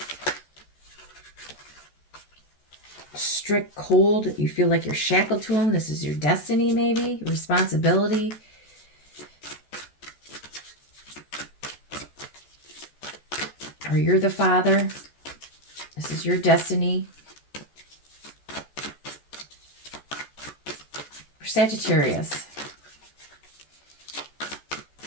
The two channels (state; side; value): late; right; 14 ms